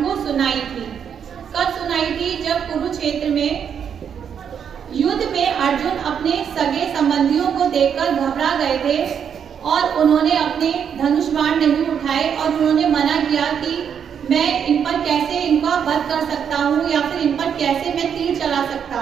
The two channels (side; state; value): left; quieter; 7.8 dB